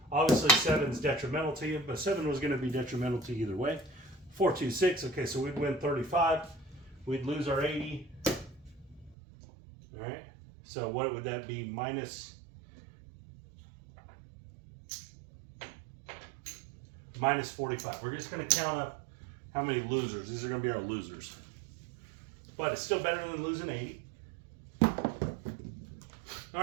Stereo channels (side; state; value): left; drops out; at 9.2 s